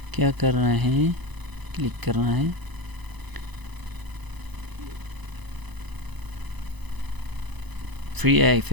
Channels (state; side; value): late; left; 1.0 ms